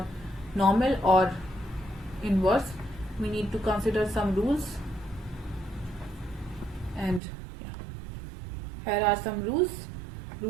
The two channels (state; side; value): drops out; left; at 7.2 s